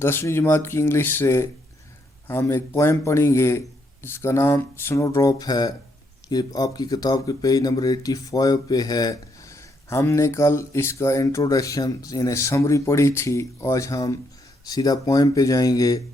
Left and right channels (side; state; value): both; normal; correlation 0.75